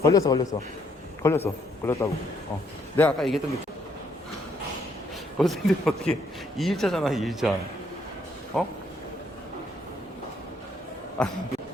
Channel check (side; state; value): both; normal; correlation 0.70